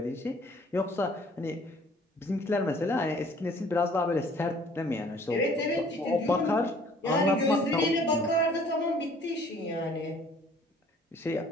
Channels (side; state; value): both; normal; correlation 0.55